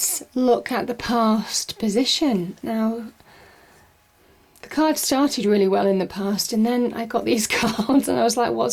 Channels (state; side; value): identical; both; correlation 1.00